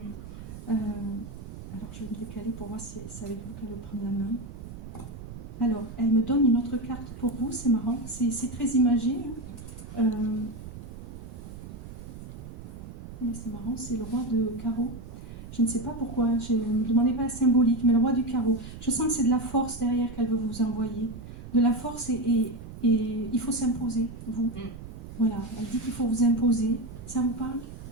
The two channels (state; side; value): noise; right; rumble, 12 dB below the sound